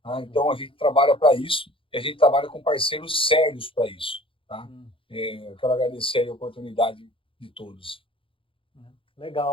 Tá? Então, a gente trabalha para isso e a gente trabalha com parceiros sérios para isso. Tá? Eu quero agradecer a oportunidade de todos.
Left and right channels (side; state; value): right; late; 0.25 ms